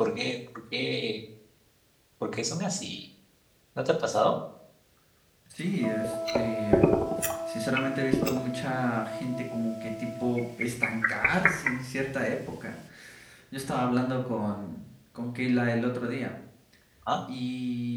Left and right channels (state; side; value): identical; both; correlation 1.00